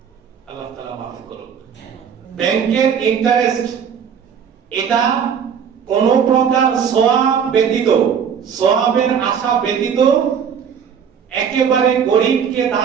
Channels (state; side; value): quieter; left; 7.4 dB